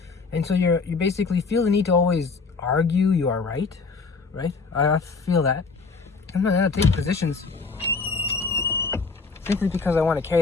So you basically feel the need to always argue you are right? I feel that. I'm not gonna take positions simply because I want to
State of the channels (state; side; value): quieter; right; 4.5 dB